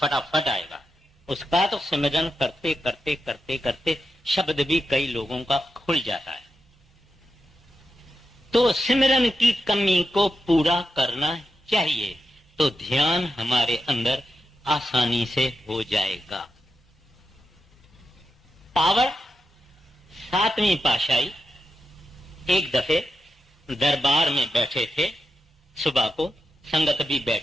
आएगा। उसका तो सिमरन करते करते करते करते शब्द भी कई लोगों का खुल जाता है। तो सिमरन की कमी को पूरा करना चाहिए तो ध्यान हमारे अंदर आसानी से हो जाएगा। पावर सातवीं पातशाही एक दफे दरबार में बैठे थे, सुबह को संगत भी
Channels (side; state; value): both; normal; correlation 0.87